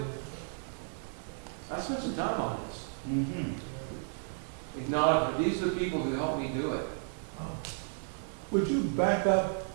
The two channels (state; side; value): silent; left; 56 dB below the other